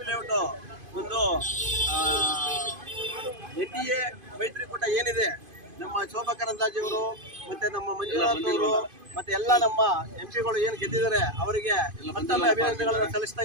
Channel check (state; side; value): late; left; 2.5 ms